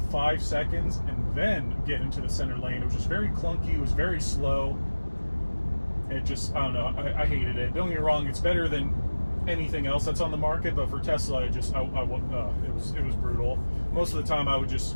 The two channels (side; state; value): both; inverted; correlation -1.00